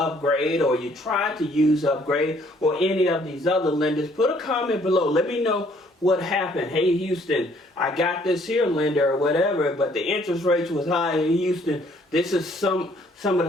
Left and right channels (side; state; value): both; normal; correlation 0.63